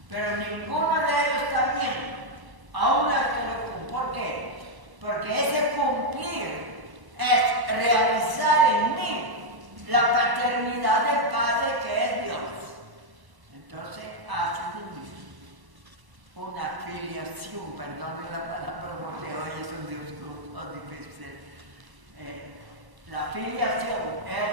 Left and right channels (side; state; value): left; late; 1.0 ms